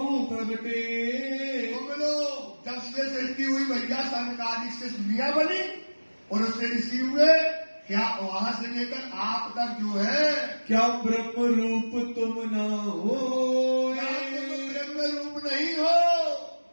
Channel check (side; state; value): both; inverted; correlation -1.00